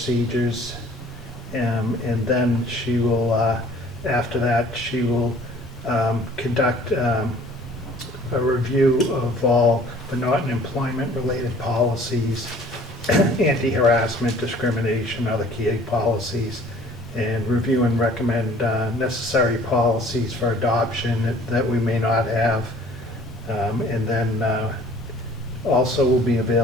And then she will, after that, she will conduct a review of all the Norton employment-related policies, anti-harassment, discrimination, other key policies, and review and recommend necessary policies for adoption that we may not have. And then also will be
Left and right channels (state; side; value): normal; both; correlation 0.52